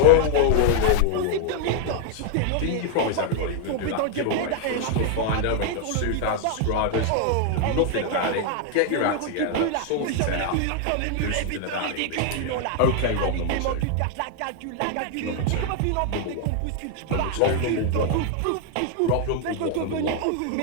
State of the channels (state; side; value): different; both; correlation 0.00